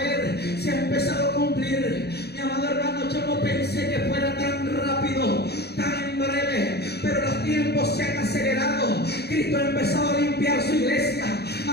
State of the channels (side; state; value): right; late; 0.48 ms